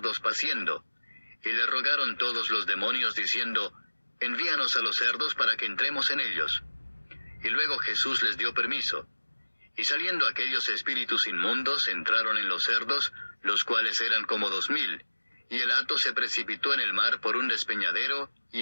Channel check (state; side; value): inverted; both; correlation -1.00